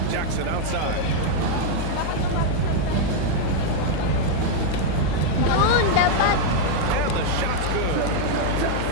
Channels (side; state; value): both; different; correlation 0.00